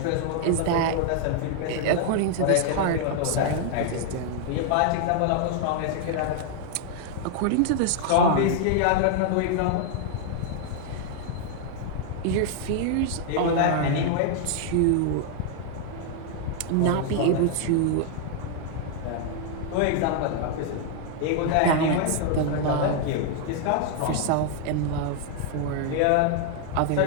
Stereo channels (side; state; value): both; different; correlation 0.00